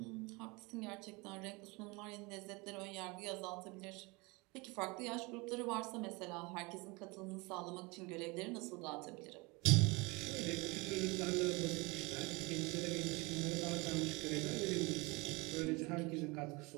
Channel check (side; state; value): left; quieter; 26.0 dB